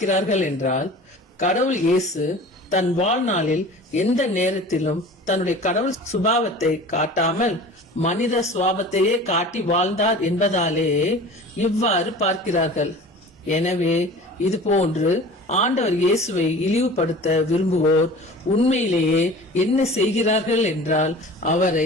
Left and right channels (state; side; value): normal; both; correlation 0.40